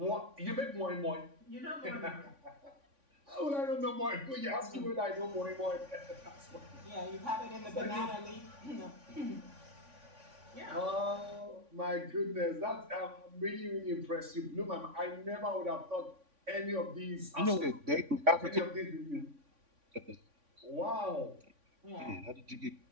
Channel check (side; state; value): left; late; 3.5 ms